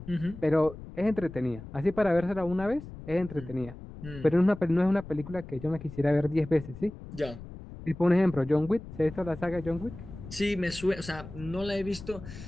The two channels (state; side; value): noise; left; rumble, 14 dB below the sound